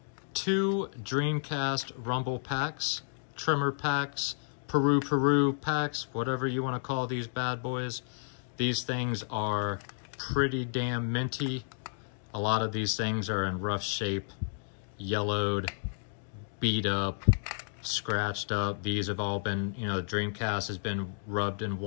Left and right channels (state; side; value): silent; right; digital silence